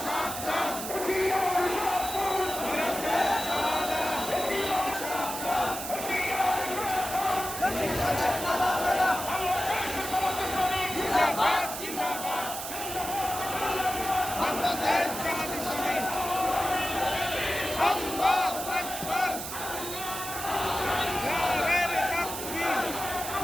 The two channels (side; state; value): right; noise; hiss, 7 dB below the sound